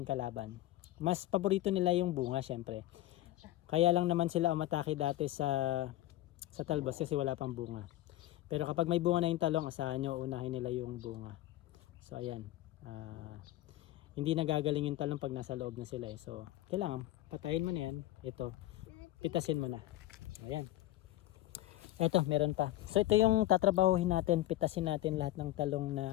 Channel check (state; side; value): quieter; right; 15.5 dB